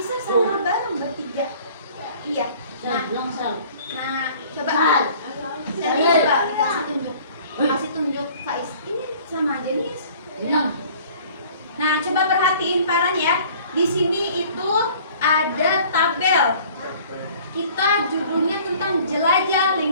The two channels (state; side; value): inverted; both; correlation -0.51